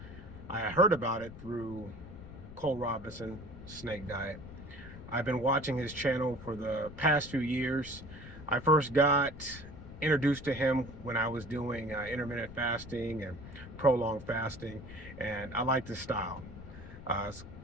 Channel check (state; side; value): noise; left; rumble, 14 dB below the sound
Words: I heard about it through Cole Robinson Snake Diet. I've been watching his channel for the past few years. I first got introduced to him when I was doing intermittent fasting and prolonged fasting, and I like his style. It's